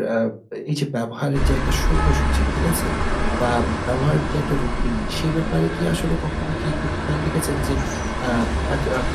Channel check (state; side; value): identical; both; correlation 1.00